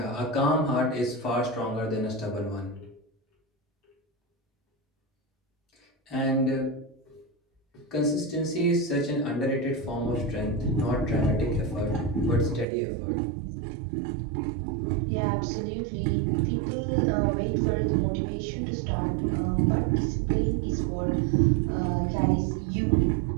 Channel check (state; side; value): drops out; left; at 12.7 s